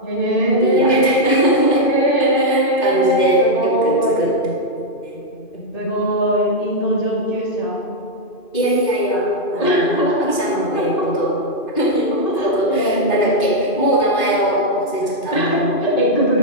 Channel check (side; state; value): right; late; 2.5 ms